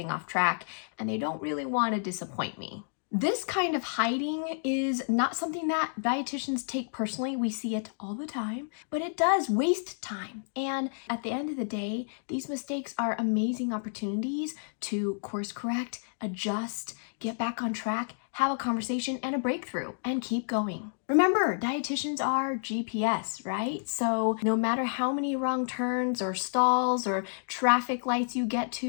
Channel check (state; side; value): silent; right; digital silence